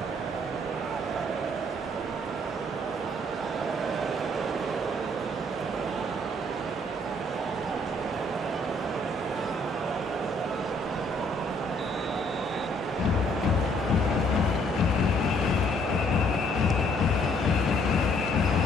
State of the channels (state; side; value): normal; both; correlation 0.65